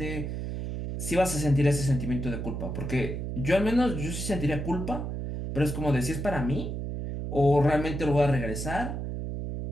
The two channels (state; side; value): noise; right; hum, 4 dB below the sound